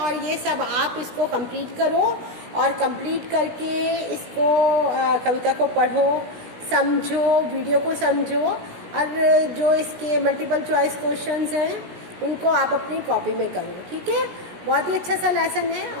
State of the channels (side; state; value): left; late; 16 ms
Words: ये सब आप इसको कंप्लीट करो और कंप्लीट करके इसको कविता को पढ़ो, समझो, वीडियो को समझो और जो इसके मल्टीपल चॉइस क्वेश्चंस हैं उनको आप अपनी कॉपी में करो। ठीक है, बहुत ही अच्छा सा लेसन है